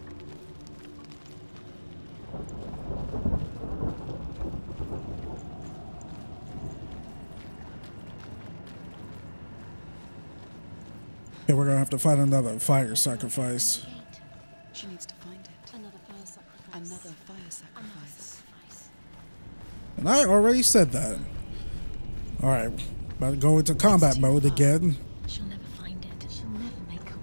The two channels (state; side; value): inverted; both; correlation -1.00